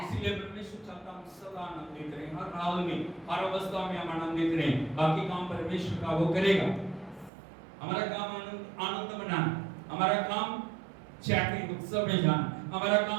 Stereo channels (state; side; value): drops out; left; at 7.3 s